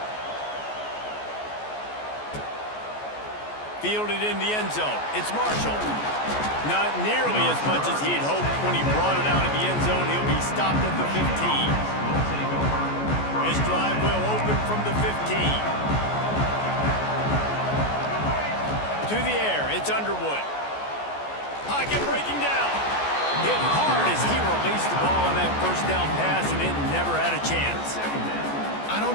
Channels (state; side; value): late; right; 14 ms